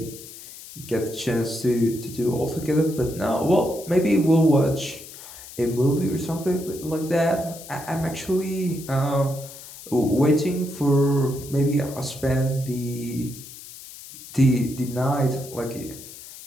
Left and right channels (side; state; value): left; noise; hiss, 15 dB below the sound